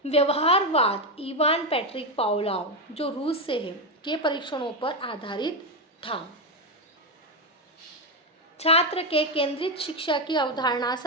व्यवहारवाद इवान पैट्रिक पावलोव, जो रूस से है, के परीक्षणों पर आधारित था। छात्र के केंद्रित शिक्षा की अवधारणा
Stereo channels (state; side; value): normal; both; correlation 0.09